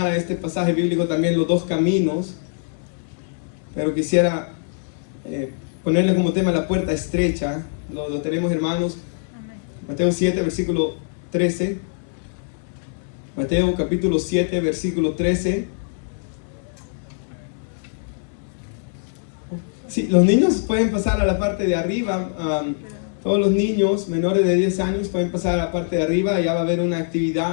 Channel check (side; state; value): right; silent; digital silence